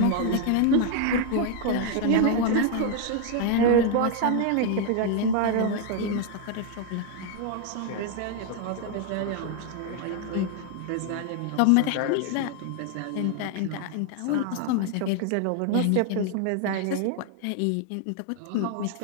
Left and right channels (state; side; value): different; both; correlation 0.00